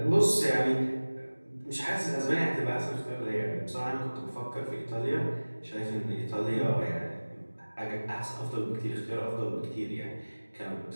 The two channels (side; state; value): both; inverted; correlation -1.00